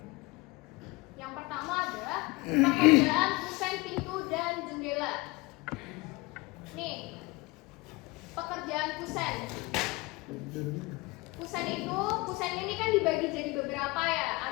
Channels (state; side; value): quieter; right; 23.7 dB